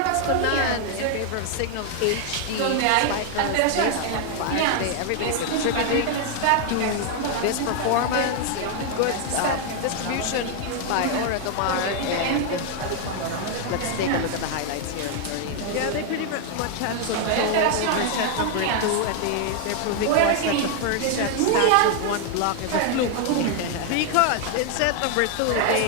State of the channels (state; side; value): different; both; correlation 0.00